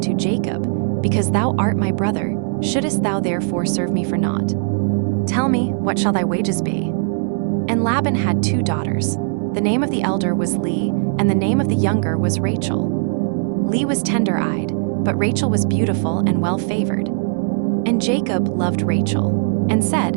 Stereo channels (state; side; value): silent; left; digital silence